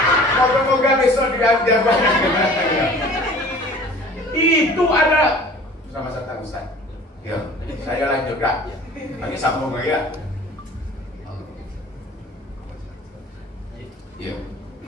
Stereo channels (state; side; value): normal; both; correlation 0.46